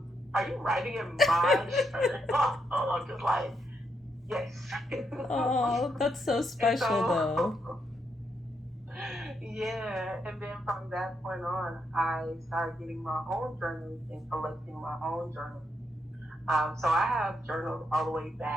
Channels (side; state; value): both; normal; correlation 0.79